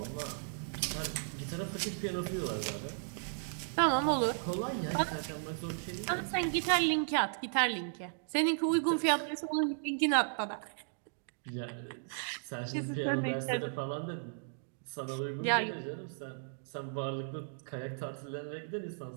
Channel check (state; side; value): silent; left; digital silence